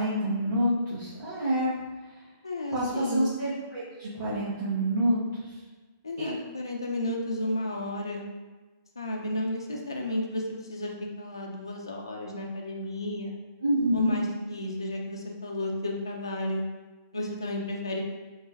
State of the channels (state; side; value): inverted; both; correlation -0.69